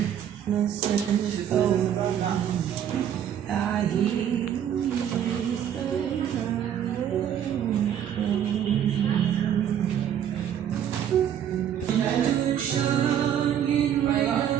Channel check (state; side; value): quieter; left; 9.6 dB